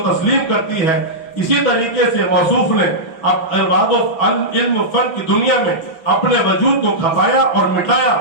तस्लीम करती है। इसी तरीके से मौसूफ ने अब अरबाब इल्म फन की दुनिया में अपने वजूद को खपाया और मिटाया,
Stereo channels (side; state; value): right; late; 6.0 ms